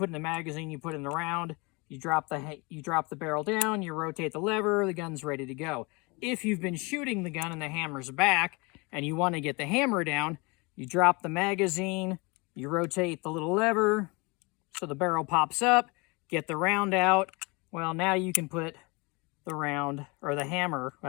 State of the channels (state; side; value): quieter; right; 27.7 dB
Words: in the magazine, you put in the round, you drop the barrel down, you rotate the lever, the gun's ready to go. If you've been shooting the gun and the hammer's back, and you want to get the hammer down, you drop the magazine, you rotate the little lever, so the barrel pops up, get the round out. Well, now you can put the round, or the hammer,